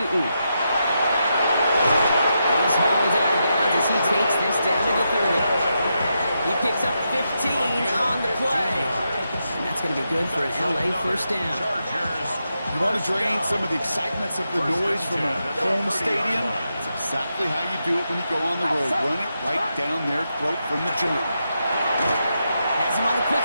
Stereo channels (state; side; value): inverted; both; correlation -0.85